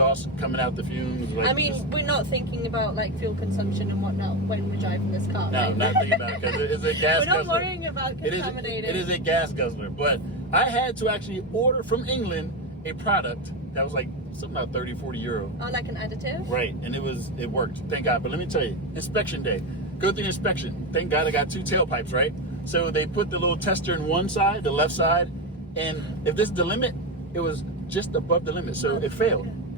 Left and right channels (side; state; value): both; normal; correlation 0.14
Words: coming out the fumes. Like, I mean, we're not thinking about like fuel consumption and whatnot when we're driving this car. No, right? not thinking about it because it's a gas We're not guzzler. worrying about contaminating. It is a gas guzzler. But I had to actually order from England a product that was like something about 30, 40 euro. Oh, like an additive? Right, and it worked. Thank God. But let me tell you, inspection day. Go through the inspection. Thank God I got 2 tailpipes, right? So they put the little tester in one side, the left side, and if this is the limit, it was just above the limit, so it failed.